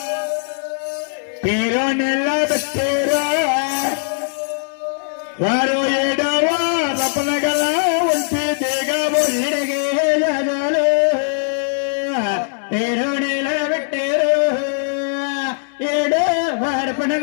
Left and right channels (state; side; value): silent; right; digital silence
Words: పేరు నిలబెట్టారు. వారు 7వ రపనగల ఉంటే దిగబోయిడగే జగలు పేరు నిలబెట్టారు. 7వ